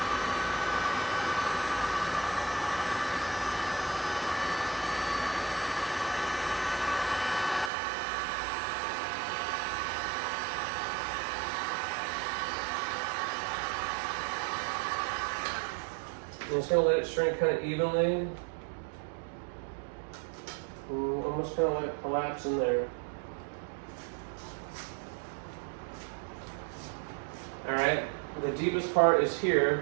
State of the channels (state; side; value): drops out; left; at 7.7 s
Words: I'm just going to let it shrink kind of evenly. Almost kind of let it collapse in there. Alright, the deepest part is